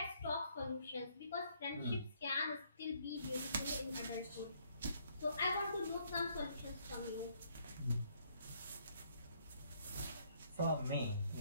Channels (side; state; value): both; inverted; correlation -0.67